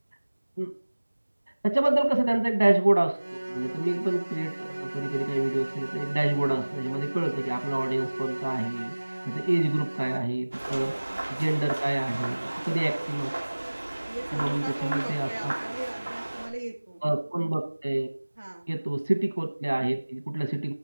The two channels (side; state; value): both; inverted; correlation -1.00